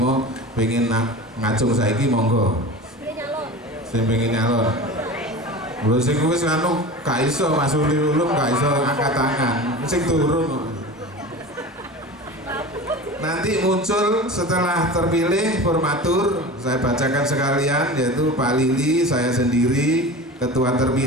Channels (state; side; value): normal; both; correlation 0.33